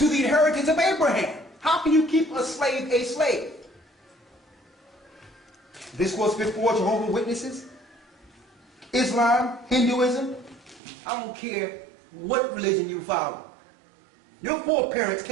the inheritance of Abraham. How can you keep a slave a slave? This was before Jehovah's Witnesses, Islam, Hinduism. I don't care what religion you follow. Your foreparents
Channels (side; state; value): left; drops out; at 10.8 s